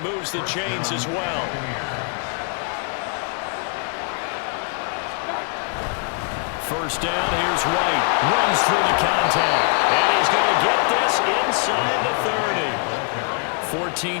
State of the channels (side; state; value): right; quieter; 39.5 dB